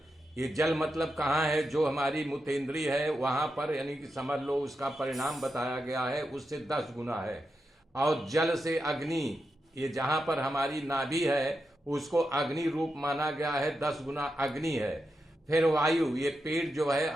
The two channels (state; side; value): normal; both; correlation 0.87